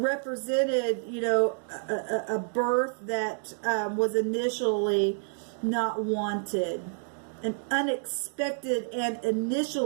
you know, a birth that was initially not wanted. An unexpected and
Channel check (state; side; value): silent; left; digital silence